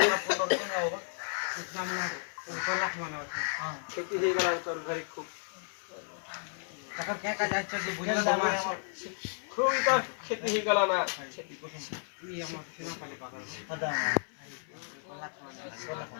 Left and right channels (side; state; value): right; silent; 56 dB below the other